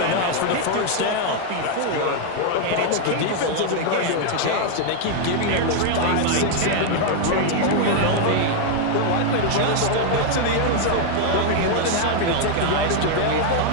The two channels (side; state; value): both; different; correlation 0.00